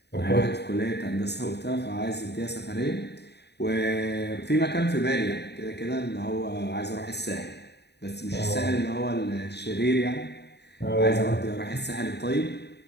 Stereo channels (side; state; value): right; late; 0.49 ms